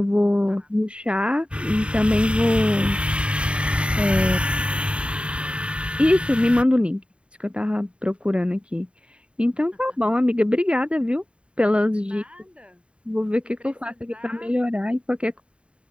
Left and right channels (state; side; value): late; left; 0.058 ms